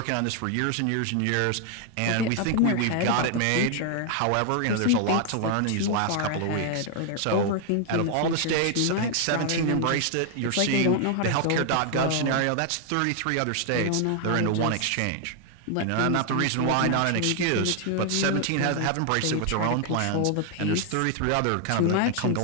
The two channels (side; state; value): both; different; correlation 0.00